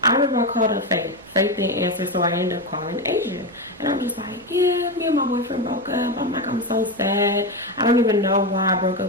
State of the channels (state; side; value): normal; both; correlation 0.13